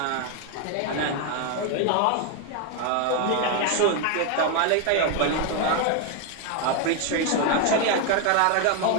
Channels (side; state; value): both; different; correlation 0.01